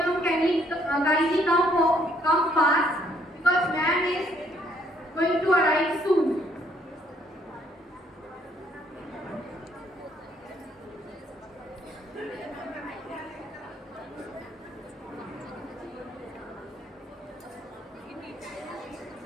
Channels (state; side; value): normal; both; correlation 0.67